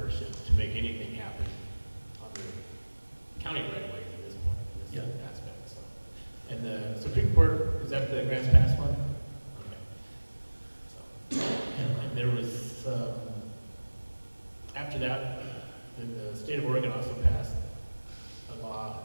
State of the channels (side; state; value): both; inverted; correlation -1.00